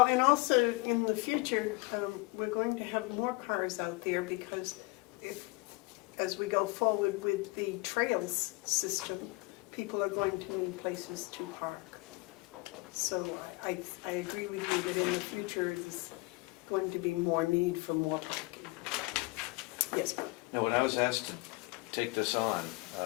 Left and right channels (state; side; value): quieter; right; 24.7 dB